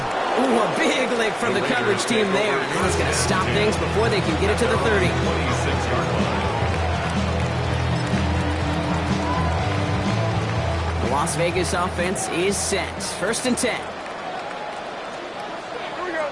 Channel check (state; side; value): identical; both; correlation 1.00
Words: Ooh, a big lick from the coverage team there. That is going to stop things before they can get it to the 30. 26-yard line. The Las Vegas offense is set. First and 10.